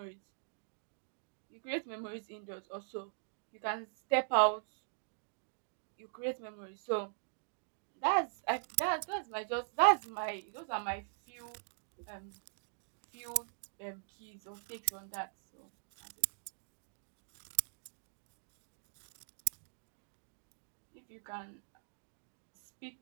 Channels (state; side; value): silent; left; digital silence